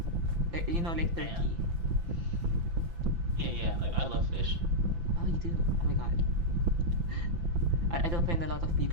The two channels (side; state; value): left; late; 5.9 ms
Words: You know, like Yeah. turkey. Yeah. Like I love fish. Oh, you do? Oh my god. I don't find a lot of